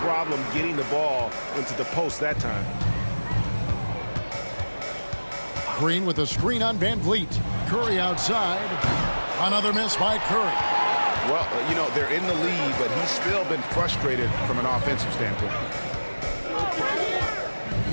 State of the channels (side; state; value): both; inverted; correlation -1.00